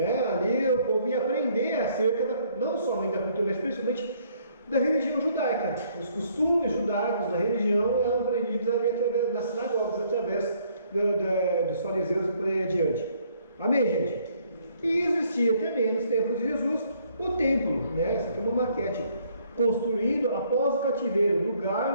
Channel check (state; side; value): inverted; both; correlation -0.65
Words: Ali o povo ia aprender acerca não somente da cultura, mas principalmente da religião judaica. Os costumes judaicos da religião eram aprendidos ali através das sinagogas, através dos fariseus e por aí adiante. Amém, gente? E existia também nos tempos de Jesus o templo, né? Essa aqui é uma maquete, construído após o cativeiro,